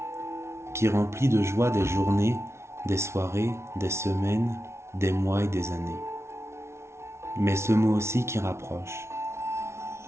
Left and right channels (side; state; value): left; late; 0.13 ms